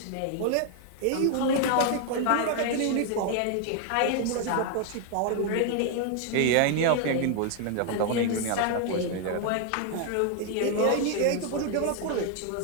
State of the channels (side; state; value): both; different; correlation 0.00